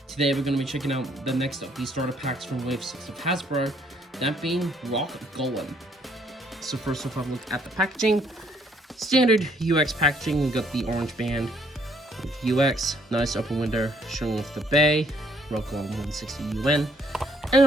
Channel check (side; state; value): both; normal; correlation 0.66